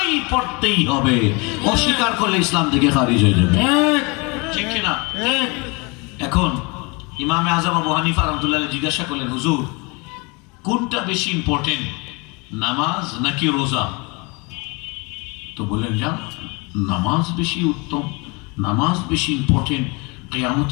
পড়তেই হবে, অস্বীকার করলে ইসলাম থেকে খারিজ হয়ে যাবে। ঠিক কিনা? এখন ইমামে আজম আবু হানিফা রাহমাতুল্লাহ আলাইহি জিজ্ঞাসা করলেন, হুজুর কোনটা বেশি ইম্পর্টেন্ট, নামাজ নাকি রোজা? তো বললেন যা নামাজ বেশি উত্তম, নামাজ বেশি ইম্পর্টেন্ট।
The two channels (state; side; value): quieter; right; 28.7 dB